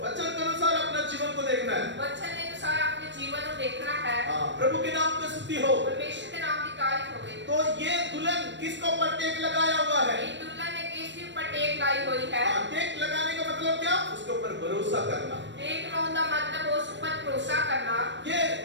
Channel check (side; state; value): left; late; 0.53 ms